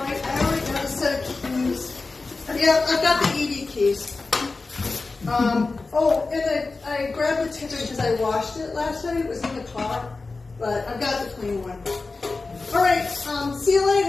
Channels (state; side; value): quieter; right; 3.8 dB